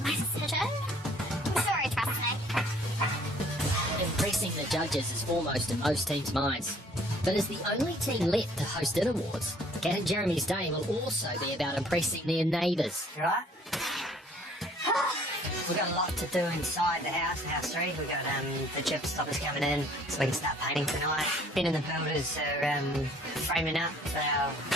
my decision. I'm sure he trusts me. Impressing the judges is foremost in most teams' minds. But as the only team left to host It Awards, Kat and Jeremy's day will also be about impressing their neighbours. You right? We've got a lot to do inside the house, house 3. We've got the chip stoppers coming in so we can start painting tonight. Ben and the builders are framing up for our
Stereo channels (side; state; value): both; normal; correlation 0.58